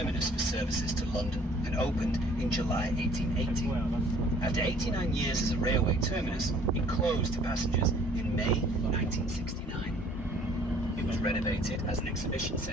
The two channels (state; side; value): normal; both; correlation 0.56